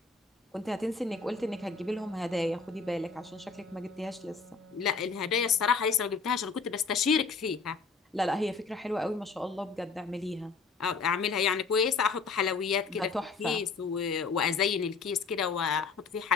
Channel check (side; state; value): right; quieter; 4.8 dB